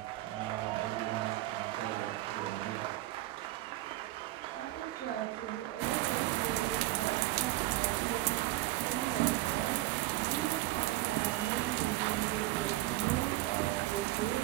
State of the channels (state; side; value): quieter; left; 17.1 dB